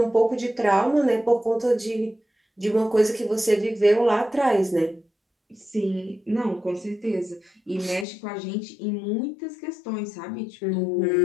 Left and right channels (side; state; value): right; drops out; at 8.1 s